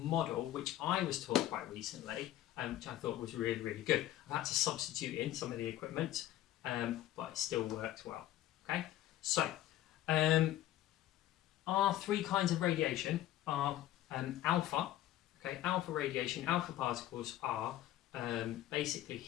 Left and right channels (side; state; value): right; quieter; 13.6 dB